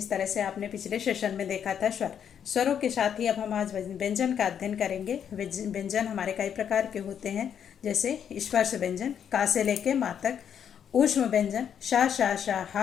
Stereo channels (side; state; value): right; quieter; 8.4 dB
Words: तरह से आपने पिछले सेशन में देखा था स्वरों के साथ ही अब हम आज व्यंजन का अध्ययन करेंगे। व्यंजन हमारे कई प्रकार के होते हैं, जैसे स्पर्श व्यंजन का से लेके मा तक, ऊष्म व्यंजन शा शा शा हा,